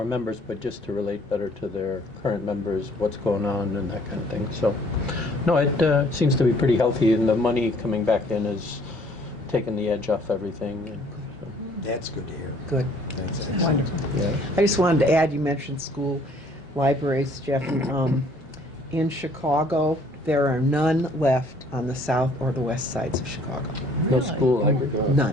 members, but just to relate better to their current members, what's going on and that kind of thing. So, no, it seems to be pretty healthy, and the money coming back in is taking the edge off everything. And so, That's good to hear. Good. That's Wonderful. yeah. I just wanted to add, you mentioned school libraries, Jeff. In Chicago, there are none left on the south or the west sides of Chicago. No school library.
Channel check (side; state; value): both; normal; correlation 0.59